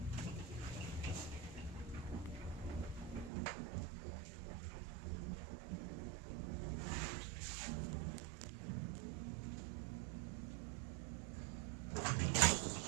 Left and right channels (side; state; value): left; drops out; at 3.3 s